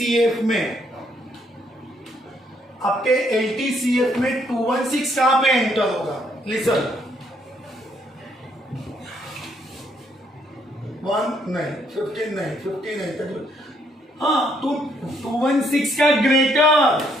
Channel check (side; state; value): both; normal; correlation 0.70